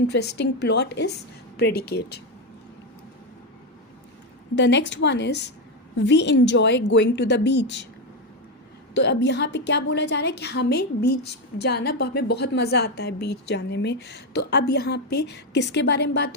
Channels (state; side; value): normal; both; correlation 0.08